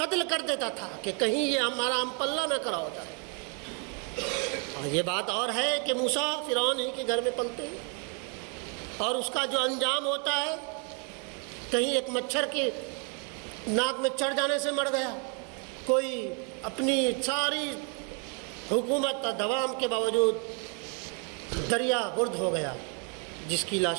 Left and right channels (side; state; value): left; quieter; 37.8 dB